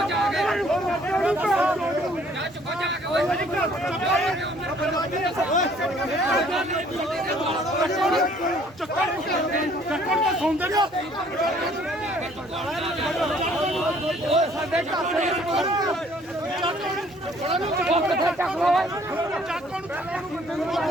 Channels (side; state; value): both; normal; correlation 0.59